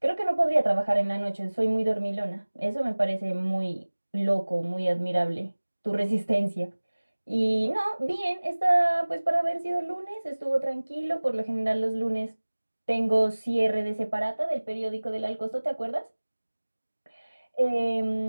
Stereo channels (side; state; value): both; inverted; correlation -1.00